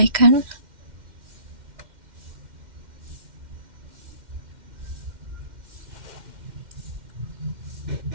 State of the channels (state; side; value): late; left; 2.1 ms